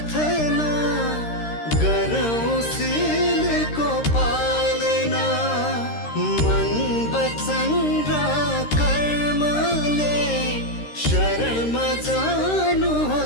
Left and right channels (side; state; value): right; late; 13 ms